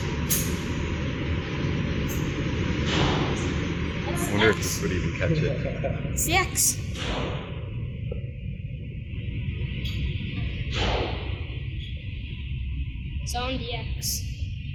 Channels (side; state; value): both; identical; correlation 1.00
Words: I wonder if this would even catch it. It's the X. Zone DX.